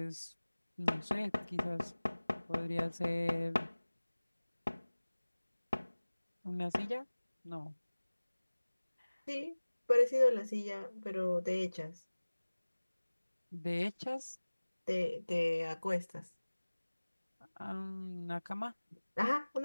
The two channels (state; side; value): inverted; both; correlation -1.00